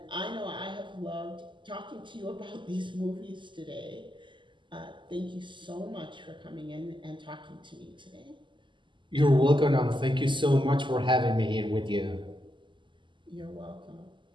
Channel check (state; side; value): late; left; 0.24 ms